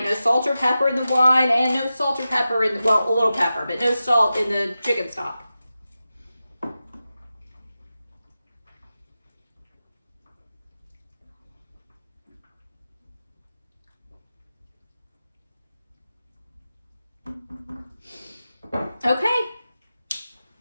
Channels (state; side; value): inverted; both; correlation -0.93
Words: No salt or pepper in the wine, and no salt or pepper in the, well, a little pepper, but no salt in the chicken stock. Okay,